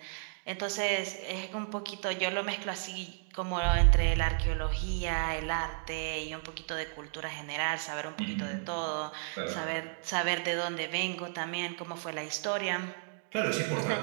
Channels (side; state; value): left; silent; digital silence